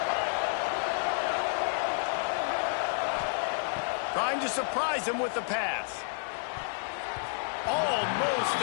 Trying to surprise him with the pass. Almost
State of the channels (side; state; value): right; silent; digital silence